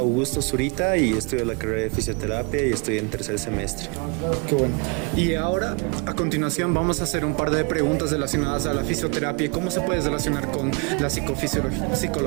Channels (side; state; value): left; quieter; 32.0 dB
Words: Zurita y estudio la carrera de fisioterapia y estoy en tercer semestre. Qué bueno. Y ahora, a continuación, vamos a hacer un par de preguntas relacionadas a la fisioterapia y cómo se puede relacionar con la